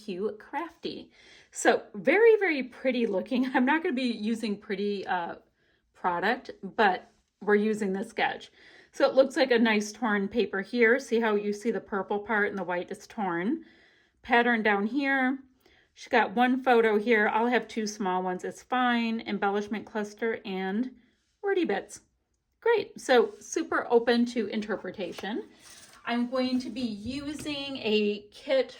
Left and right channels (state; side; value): identical; both; correlation 1.00